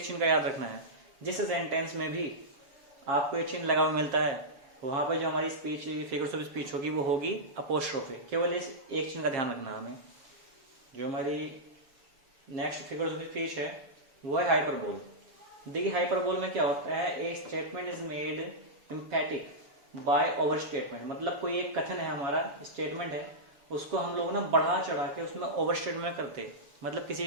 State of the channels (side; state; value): left; late; 7.0 ms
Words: चिन्ह का याद रखना है। जिस सेंटेंस में भी आपको ये चिन्ह लगा हुआ मिलता है वहां पर जो हमारी स्पीच फिगर्स ऑफ स्पीच होगी वो होगी अपोस्ट्रोफे। केवल इस एक चिन्ह का ध्यान रखना है हमें। जो हमारी नेक्स्ट फिगर्स ऑफ स्पीच है वो है हाइपरबोल। देखिए हाइपरबोल में क्या होता है, a statement is made emphatic by over statement. मतलब कोई एक कथन है, हमारा स्टेटमेंट है, उसको हम लोग ना बढ़ा चढ़ा के उसमें ओवर स्टेटमेंट करते, मतलब किसी